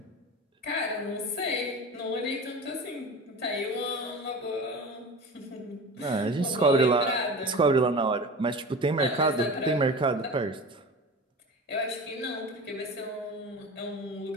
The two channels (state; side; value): normal; both; correlation 0.33